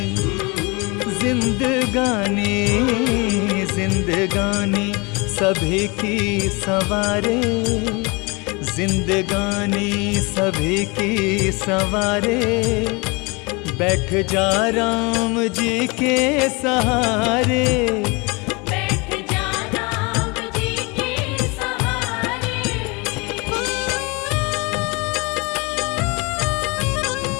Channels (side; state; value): right; quieter; 28.0 dB